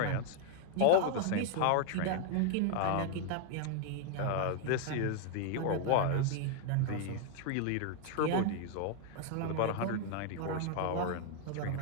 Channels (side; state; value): both; different; correlation 0.00